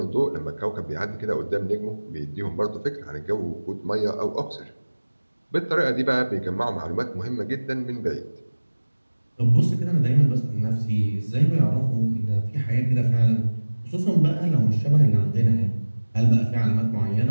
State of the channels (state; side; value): inverted; both; correlation -1.00